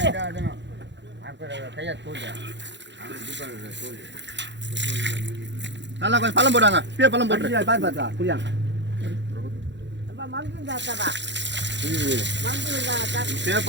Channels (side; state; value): left; late; 0.52 ms